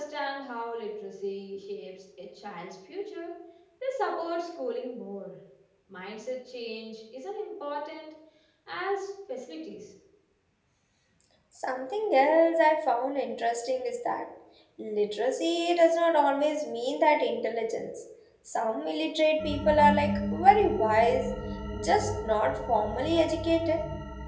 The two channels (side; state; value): both; identical; correlation 1.00